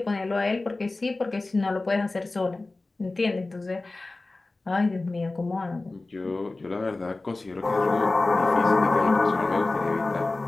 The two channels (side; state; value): right; quieter; 3.2 dB